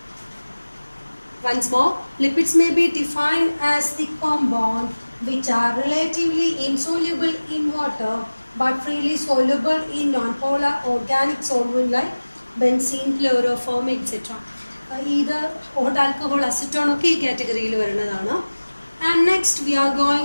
Once more, lipids may be defined as the compound which are relatively insoluble in water but freely soluble in non-polar organic solvent like benzene, chloroform, etc. Either hot alcohol, acetone ഒക്കെ ഈ കാറ്റഗറിയിൽ വരുന്നതാണ്. And next we are going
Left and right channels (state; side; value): inverted; both; correlation -1.00